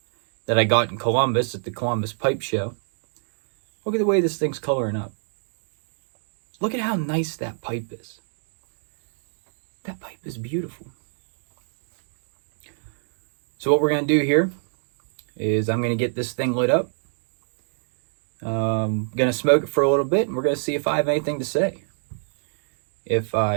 that I got in Columbus at the Columbus Pipe Show. Look at the way this thing's coloring up. Look at how nice that pipe is. That pipe is beautiful. So what we're going to do here is I'm going to get this thing lit up. I'm going to smoke it for a little bit, and we're going to see if I have anything to say. If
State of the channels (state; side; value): silent; left; digital silence